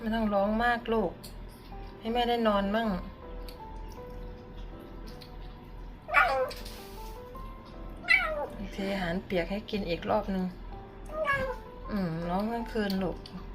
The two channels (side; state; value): both; identical; correlation 1.00